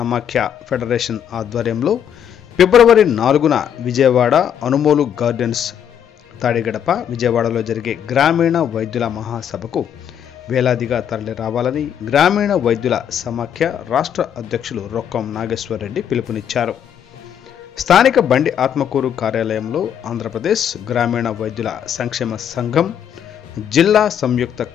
ఫెడరేషన్ ఆధ్వర్యంలో ఫిబ్రవరి 4న విజయవాడ అనుమోలు గార్డెన్స్ తాడిగడప విజయవాడలో జరిగే గ్రామీణ వైద్యుల మహాసభకు వేలాదిగా తరలి రావాలని గ్రామీణ వైద్యుల సమాఖ్య రాష్ట్ర అధ్యక్షులు రొక్కం నాగేశ్వర్ రెడ్డి పిలుపునిచ్చారు. స్థానిక బండి ఆత్మకూరు కార్యాలయంలో ఆంధ్రప్రదేశ్ గ్రామీణ వైద్యుల సంక్షేమ సంఘం జిల్లా సంయుక్త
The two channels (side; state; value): right; quieter; 9.0 dB